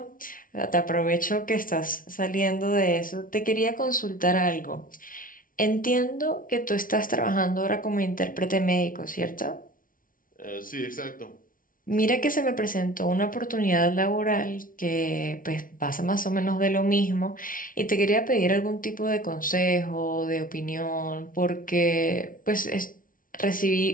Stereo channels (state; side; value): late; right; 0.39 ms